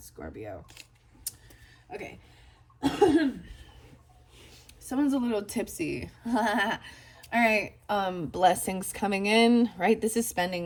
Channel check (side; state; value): both; identical; correlation 1.00